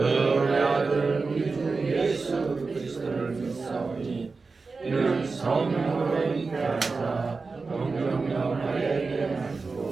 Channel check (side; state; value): left; quieter; 4.2 dB